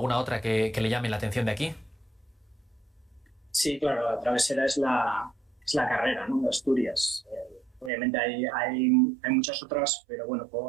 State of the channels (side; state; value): left; drops out; at 7.9 s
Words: otra que le llame la atención de aquí. Sí, claro, la travesera es la carrera, ¿no?, de Asturias. Obviamente hay muchas otras, pero bueno,